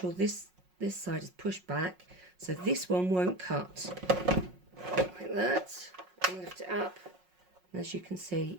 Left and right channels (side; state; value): left; late; 5.5 ms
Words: this side is pushed back so this one won't cut, like that, and lift it up, and as you can see